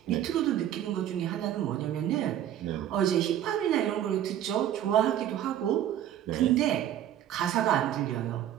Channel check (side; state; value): left; quieter; 11.3 dB